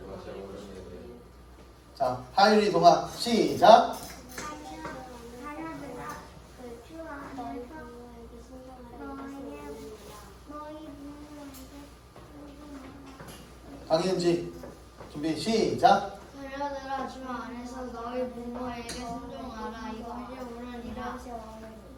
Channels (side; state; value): both; identical; correlation 1.00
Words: 옳은 일이니 자, 하율이 동화 시작. 강현지 준비 시작. 자녀들아 주 안에서 너희 부모에게 순종하라. 이것이 옳으니라.